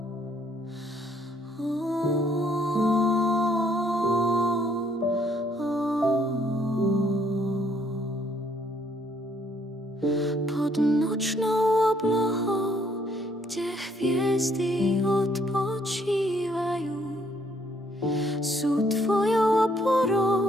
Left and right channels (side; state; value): both; normal; correlation 0.67